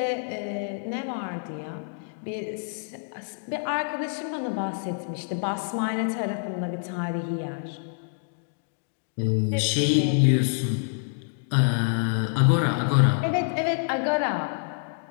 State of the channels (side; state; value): right; silent; digital silence